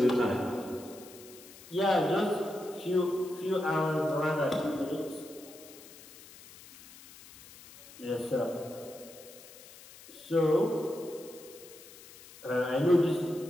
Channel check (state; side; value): noise; left; hiss, 19 dB below the sound